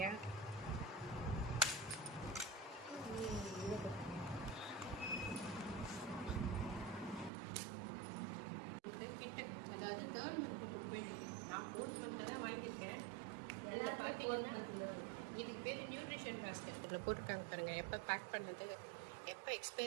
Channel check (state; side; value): drops out; left; at 7.3 s